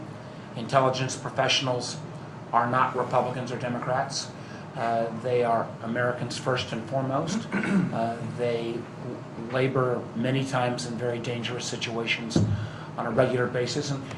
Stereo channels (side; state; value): both; identical; correlation 1.00